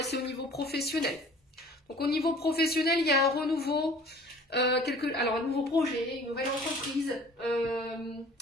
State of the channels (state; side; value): normal; both; correlation 0.49